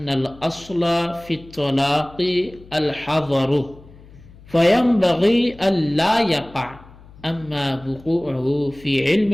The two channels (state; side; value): noise; left; hum, 22 dB below the sound